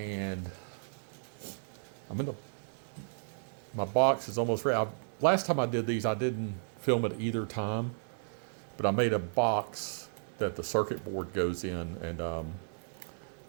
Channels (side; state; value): left; silent; digital silence